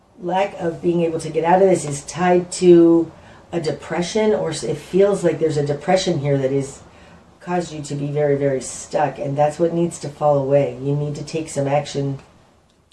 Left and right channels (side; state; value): both; identical; correlation 1.00